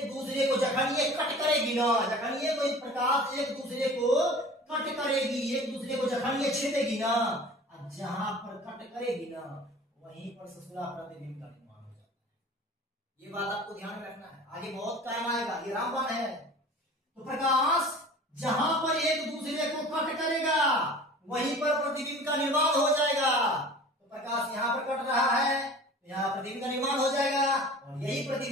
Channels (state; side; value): normal; both; correlation 0.42